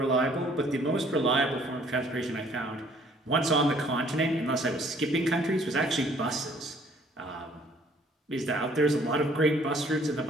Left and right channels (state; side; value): normal; both; correlation 0.59